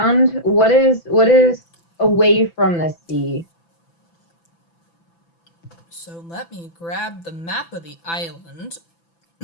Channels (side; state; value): right; late; 6.0 ms